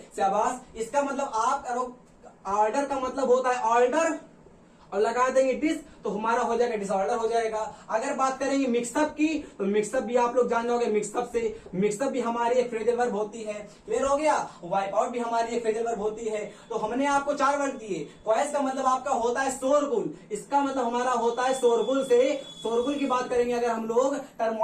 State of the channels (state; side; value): identical; both; correlation 1.00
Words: शाबाश। इसका मतलब आप करो, ऑर्डर का मतलब होता है ऑर्डर, और लगा देंगे डिस तो हमारा हो जाएगा डिसऑर्डर हो जाएगा। अगर बात करेंगे मिक्सअप की, तो मिक्सअप भी आप लोग जान जाओगे। मिक्सअप से, मिक्सअप भी हमारी एक फ्रेजल वर्ब होती है। क्लियर हो गया? वाइप आउट भी हमारी एक फ्रेजल वर्ब होती है। तो हमने आपको 4 वर्ड दिए। क्वाइस का मतलब आपका होता है शोरगुल, इसका मतलब हमारा होता है शोरगुल से। शोरगुल की बात करेंगे अगर हम लोग,